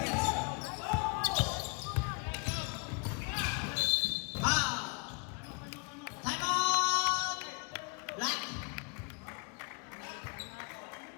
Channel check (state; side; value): quieter; right; 33.6 dB